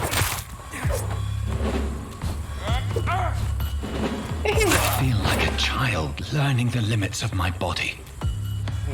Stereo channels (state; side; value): identical; both; correlation 1.00